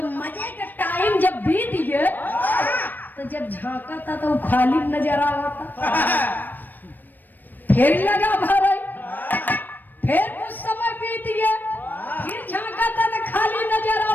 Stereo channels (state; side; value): late; right; 0.090 ms